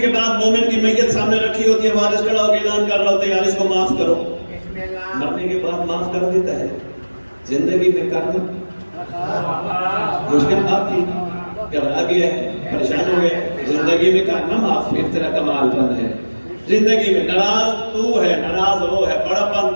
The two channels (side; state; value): both; inverted; correlation -1.00